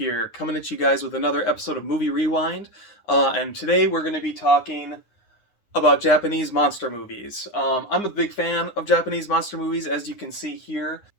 coming at you guys with another episode of Movie Rewind. And today we're going to be talking about Japanese monster movies. I'm a big fan of Japanese monster movies, as you can see here,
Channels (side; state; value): right; late; 9.8 ms